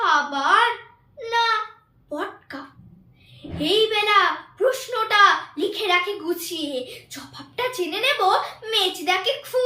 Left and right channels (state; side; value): identical; both; correlation 1.00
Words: না পটকা। এই বেলা প্রশ্নটা লিখে রাখি গুছিয়ে, জবাবটা জেনে নেব মেজদাকে